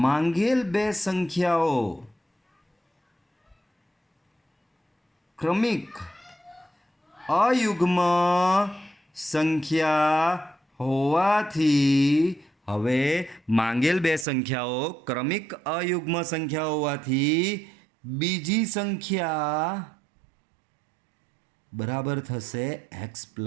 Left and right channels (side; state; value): left; drops out; at 14.2 s